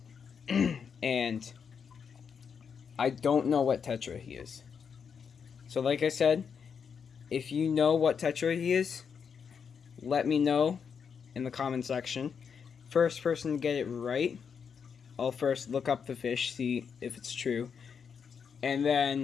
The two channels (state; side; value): quieter; right; 6.6 dB